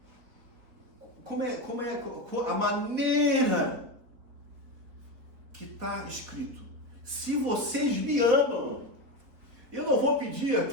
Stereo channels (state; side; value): late; left; 4.2 ms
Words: a maneira que está escrito. Se vocês me amam, eu não vou pedir